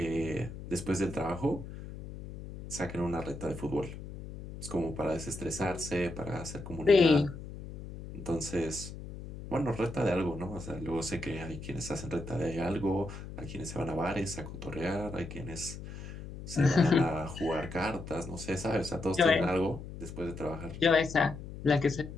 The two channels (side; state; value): left; noise; hum, 11 dB below the sound